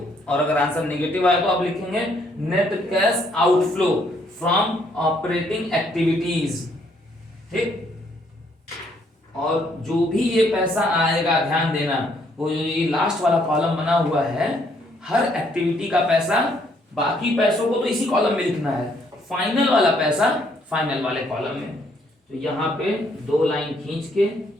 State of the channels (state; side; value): normal; both; correlation 0.69